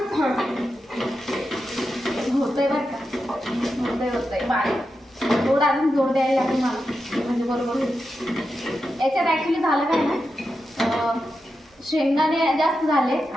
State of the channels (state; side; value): normal; both; correlation 0.89